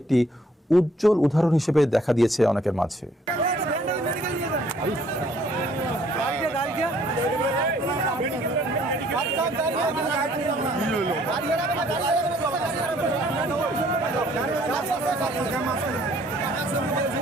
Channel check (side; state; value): both; normal; correlation 0.62